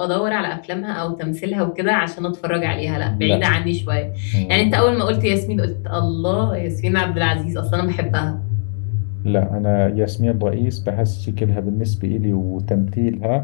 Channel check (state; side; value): silent; right; digital silence